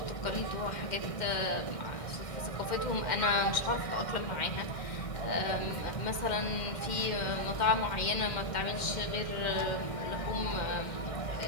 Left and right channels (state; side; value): late; right; 2.1 ms